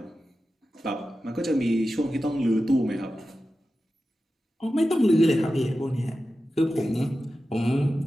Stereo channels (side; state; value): both; normal; correlation 0.93